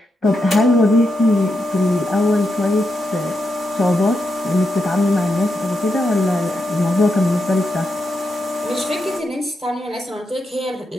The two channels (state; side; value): normal; both; correlation 0.84